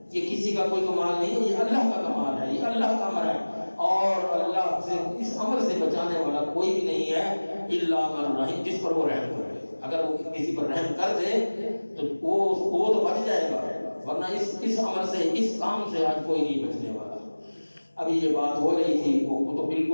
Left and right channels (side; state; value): both; inverted; correlation -1.00